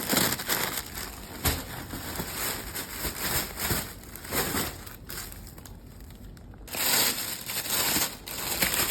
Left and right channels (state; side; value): identical; both; correlation 1.00